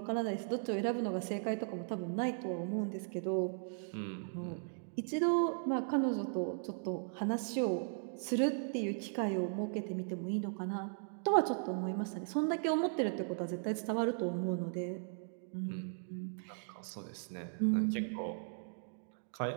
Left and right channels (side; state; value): left; silent; digital silence